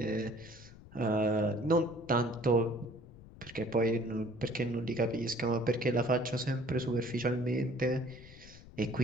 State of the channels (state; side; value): noise; left; rumble, 19 dB below the sound